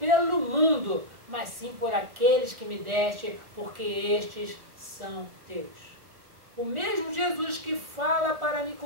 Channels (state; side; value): late; left; 1.3 ms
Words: mundo, mas sim por aqueles que me deste, porque estes são teus. O mesmo Jesus que fala para